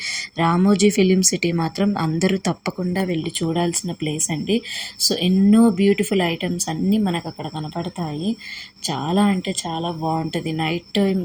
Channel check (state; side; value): identical; both; correlation 1.00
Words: రామోజీ ఫిలిం సిటీ మాత్రం అందరూ తప్పకుండా వెళ్ళి చూడాల్సిన ప్లేస్ అండి. సో ఎన్నో బ్యూటిఫుల్ ఐటమ్స్ అన్నీ మనకు అక్కడ కనపడతాయి. చాలా అంటే చాలా బాగుంటుంది. నైట్